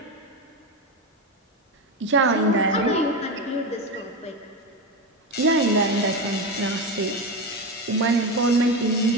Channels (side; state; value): both; normal; correlation 0.17